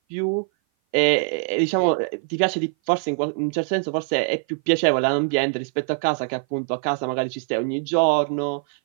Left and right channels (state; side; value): silent; left; 57 dB below the other